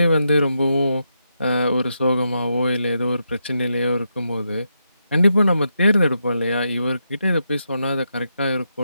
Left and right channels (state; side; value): inverted; both; correlation -0.84